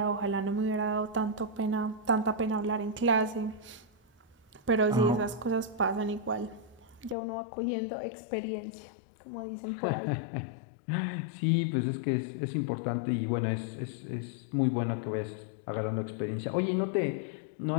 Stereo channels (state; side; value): drops out; right; at 7.2 s